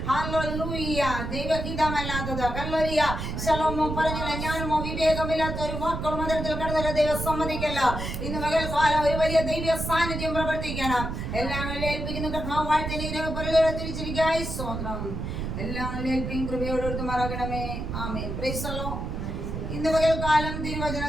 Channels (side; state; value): right; noise; rumble, 4 dB below the sound